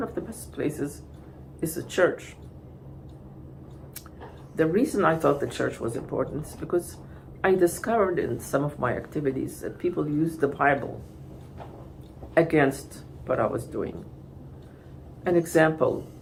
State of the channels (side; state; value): both; identical; correlation 1.00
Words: of the best places is a church. The reason I thought the church was important is because I discovered in some of my activities that people used the Bible against what I was doing. An example,